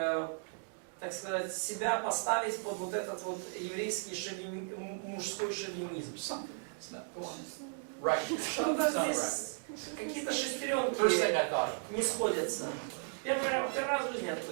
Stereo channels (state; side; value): silent; left; digital silence